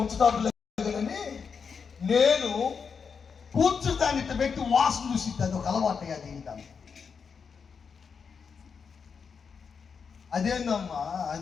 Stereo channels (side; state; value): right; quieter; 5.9 dB